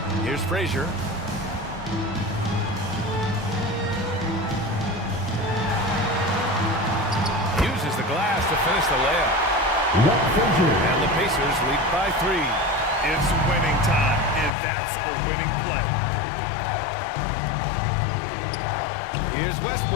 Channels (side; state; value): right; drops out; at 14.5 s